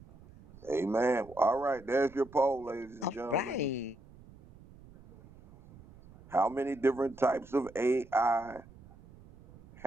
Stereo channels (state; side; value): noise; right; rumble, 22 dB below the sound